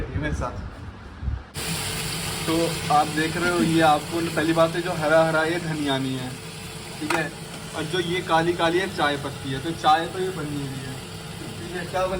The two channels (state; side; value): identical; both; correlation 1.00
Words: है मेरे साथ। तो आप देख रहे हो, ये आपको पहली बात है जो हरा हरा ये धनिया नहीं है, ठीक है। और जो ये काली काली है चाय पत्ती है, तो चाय तो ये बनी हुई है, ठीक है। क्या बन